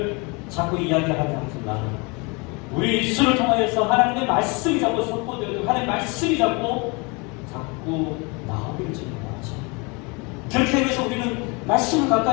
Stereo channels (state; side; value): quieter; right; 29.2 dB